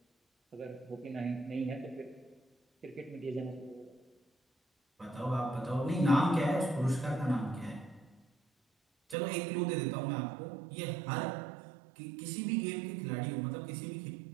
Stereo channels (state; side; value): drops out; left; at 9.2 s